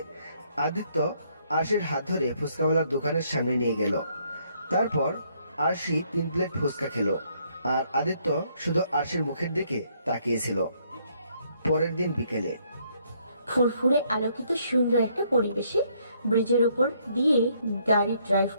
আদিত্য আরশির হাত ধরে ফুচকাওয়ালার দোকানের সামনে নিয়ে গেল। তারপর আরশি 3 প্লেট ফুচকা খেলো। আর আদিত্য শুধু আরশির মুখের দিকে তাকিয়েছিল। পরের দিন বিকেলে ফুরফুরে আলোকিত সুন্দর একটা পরিবেশে ব্রিজের উপর দিয়ে গাড়ি ড্রাইভ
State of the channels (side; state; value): both; inverted; correlation -0.70